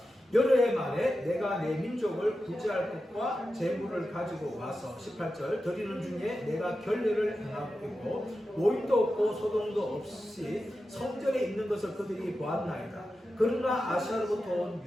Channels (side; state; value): both; normal; correlation 0.91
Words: 여러 해 만에 내가 내 민족을 구제할 것과 재물을 가지고 와서 18절 드리는 중에 내가 결례를 행하고 오인도 없고 소동도 없이 성전에 있는 것을 그들이 보았나이다. 그러나 아시아로부터